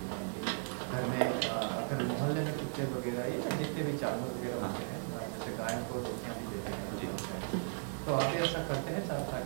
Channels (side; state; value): left; silent; 54 dB below the other